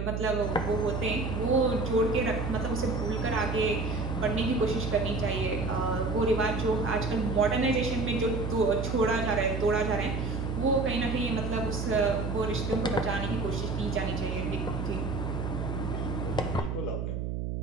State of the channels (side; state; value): right; noise; hum, 3 dB below the sound